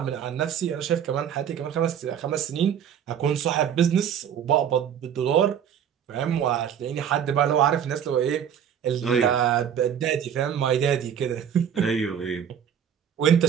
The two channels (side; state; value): left; quieter; 8.8 dB